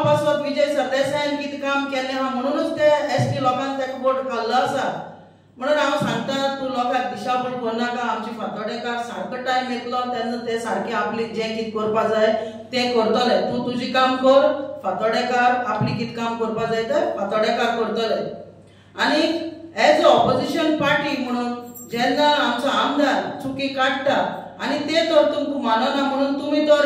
पासत विजय सरदेसायान कितें काम केल्लें आहा म्हणूनच ते एसटी लोकांक तेका वोट घाल्लो आसा म्हणून हांव सांगता तूं लोकांक दिशाभूल करनाका आमचे फातोडेकार सारको टायम येतलो तेन्ना ते सारके आपले जें कितें करपा जाय तें करतले तूं तुजें काम कर फातोडेकार आपली कितें काम करपा जाय तें फातोडेकार करतले। आनी एज अ ऑपोजिशन पार्टी म्हणून जेन्ना आमचो आमदार चुकी काडटा आनी ते तर तुमकां मानना म्हणून तुमी तर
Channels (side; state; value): both; identical; correlation 1.00